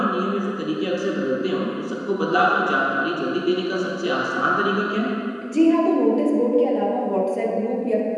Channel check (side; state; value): both; identical; correlation 1.00